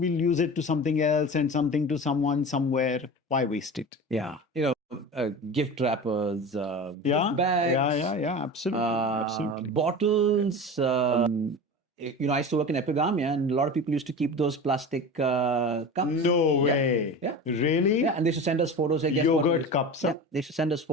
use it to something else and something to someone somewhere. Why waste it? Yeah. You know, gift wrappers, gift bags. Yeah. Absolutely. Bottles. You know, I used to work in epigamia, and a lot of people used to keep those plastic cups. No way. Yeah. Really? Yeah, and they used to send us photos. Yogurt cups. Yeah, they used to send us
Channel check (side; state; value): both; normal; correlation 0.31